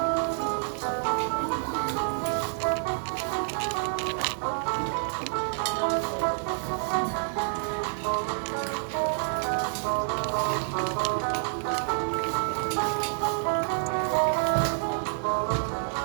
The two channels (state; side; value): silent; left; 59 dB below the other